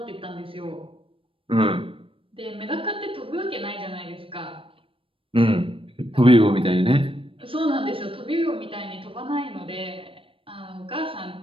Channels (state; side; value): late; left; 0.26 ms